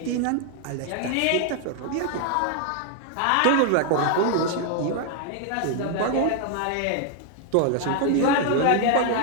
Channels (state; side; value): different; both; correlation 0.00